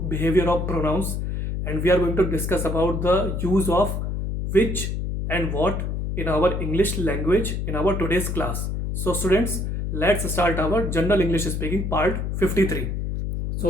behavior of pronouns, and we are going to discuss about the use of which and what in our English language in our today's class. So students, let's start our General English Speaking part 53.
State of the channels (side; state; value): left; noise; hum, 2 dB below the sound